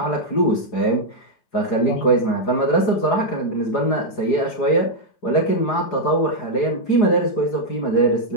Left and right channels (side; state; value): right; late; 4.8 ms